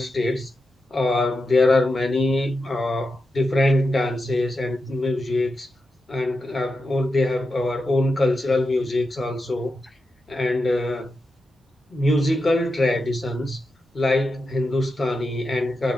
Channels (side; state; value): both; normal; correlation 0.89